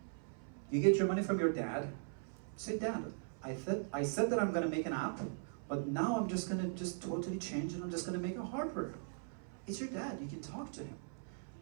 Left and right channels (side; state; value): left; silent; 51 dB below the other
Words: You get your money from your dad. Say, Dad, I said that I'm going to make an app, but now I'm just going to totally change and I'm just going to make a hardware. It's your dad. You can talk to him.